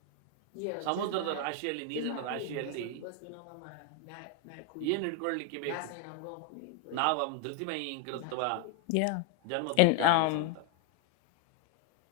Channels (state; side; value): different; both; correlation 0.01